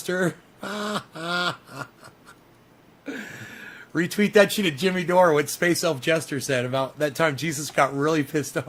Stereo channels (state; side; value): identical; both; correlation 1.00